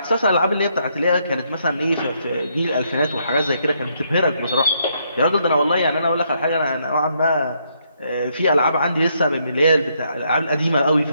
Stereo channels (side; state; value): both; inverted; correlation -0.74